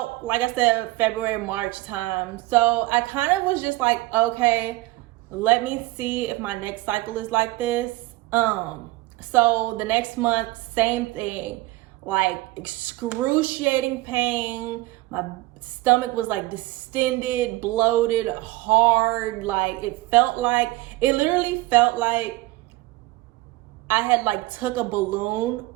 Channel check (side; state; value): left; quieter; 19.4 dB